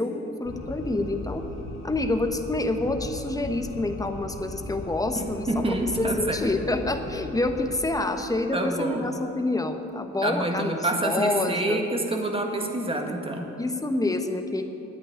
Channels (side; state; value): both; normal; correlation 0.57